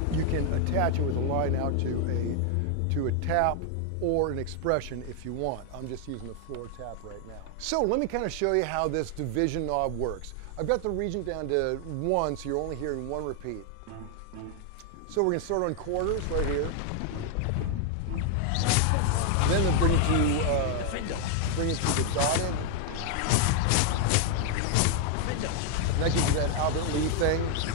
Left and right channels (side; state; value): both; different; correlation 0.00